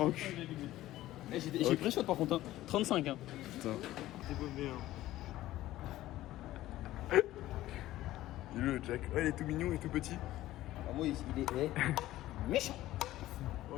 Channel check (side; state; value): right; quieter; 15.3 dB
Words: J'ai pris shot par contre, hein. 35, hein. Putain. T'es paumé, hein. Il est le Jack. Ouais, il est tout mignon et tout petit. Ah, moi, il est méchant.